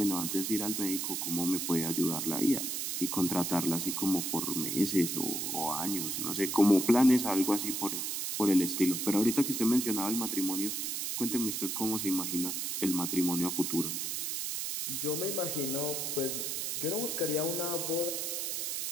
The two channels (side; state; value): right; noise; hiss, 2 dB below the sound